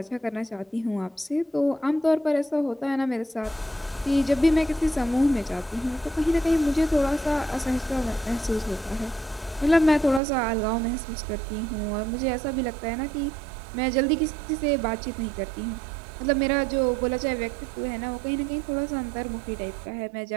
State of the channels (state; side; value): drops out; left; at 10.2 s